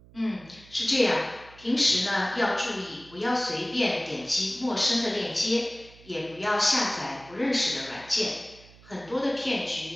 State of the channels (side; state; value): right; noise; hum, 23 dB below the sound